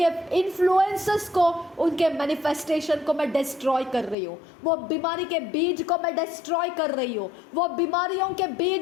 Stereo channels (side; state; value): right; drops out; at 4.2 s